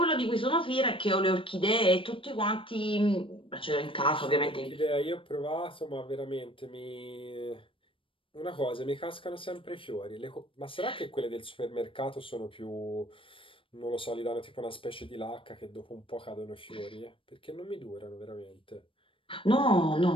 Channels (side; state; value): right; late; 0.25 ms